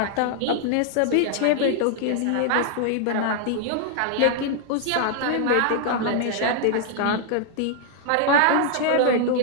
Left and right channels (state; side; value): different; both; correlation -0.01